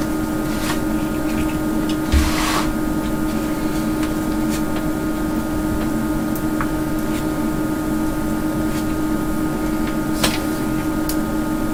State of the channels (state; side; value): identical; both; correlation 1.00